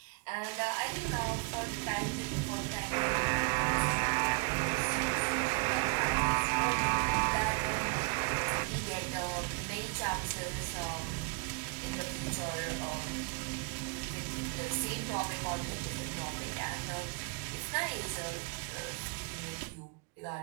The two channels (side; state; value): left; quieter; 31.5 dB